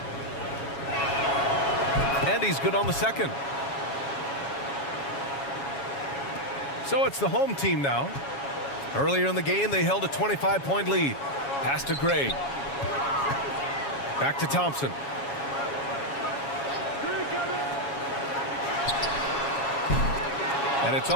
And he's good on the second. So it's the home team now. Earlier in the game, they held a 25-point lead. Pass to Gray. Back to Thompson. And it's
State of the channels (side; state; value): right; late; 7.2 ms